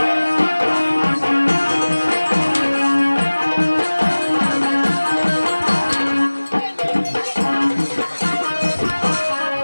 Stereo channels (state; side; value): inverted; both; correlation -1.00